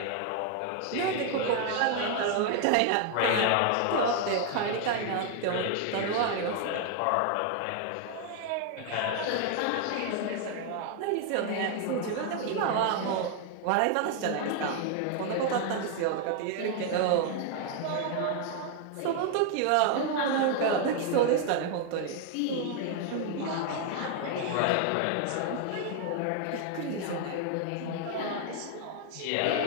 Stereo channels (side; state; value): both; different; correlation 0.00